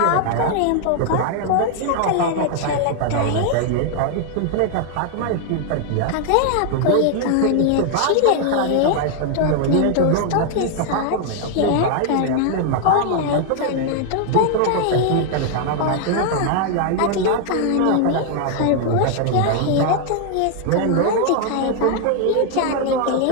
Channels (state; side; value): different; both; correlation 0.00